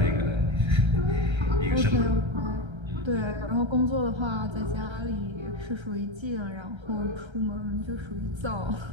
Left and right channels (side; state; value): left; late; 1.3 ms